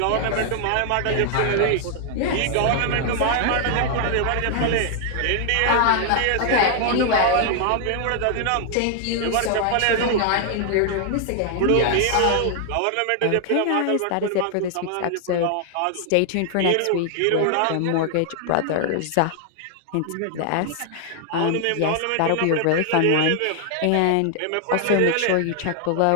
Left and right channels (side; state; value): both; different; correlation 0.00